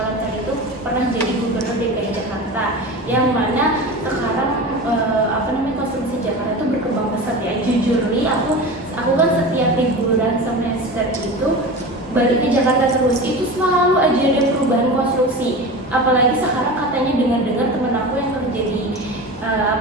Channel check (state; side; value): normal; both; correlation 0.30